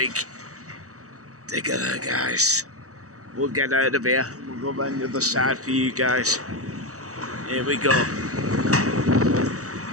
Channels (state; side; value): late; left; 0.65 ms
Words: digger there, guys. We'll get out of here. We'll go around the other side for you guys. Here we go.